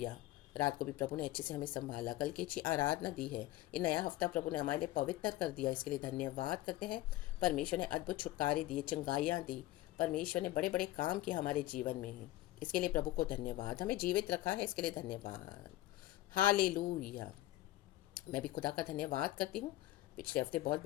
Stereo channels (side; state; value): right; quieter; 16.2 dB